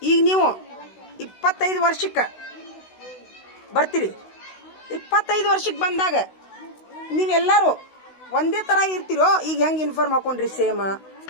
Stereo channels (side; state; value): right; late; 16 ms